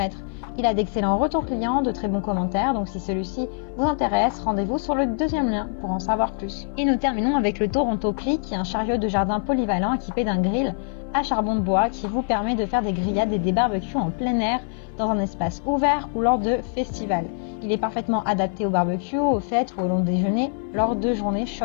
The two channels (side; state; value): right; silent; 58 dB below the other